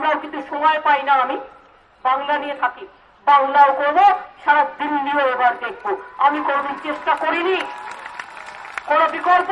কিন্তু সময় পাই না, আমি বাংলা নিয়ে থাকি, বাংলাও করবো, সারা দিল্লিও এবার দেখবো। আমি কোনদিন চেষ্টা করিনি, কোন বিকল্প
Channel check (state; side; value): identical; both; correlation 1.00